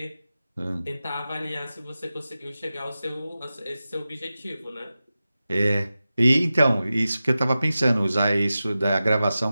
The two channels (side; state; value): both; inverted; correlation -0.94